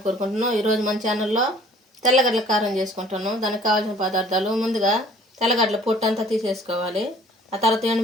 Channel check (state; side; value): normal; both; correlation 0.53